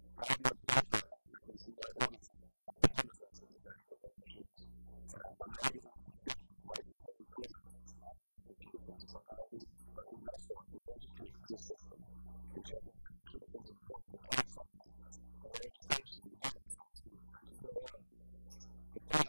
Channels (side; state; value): both; inverted; correlation -1.00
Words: I have my profile. I can see my order history, my payment methods if I need to manage those, my magazine subscriptions, licensing and permits, lottery applications. If I buy a new vessel, I can register it through the system. I can check my applications and points, account settings, hunter education, events. I mean, I could go on. The point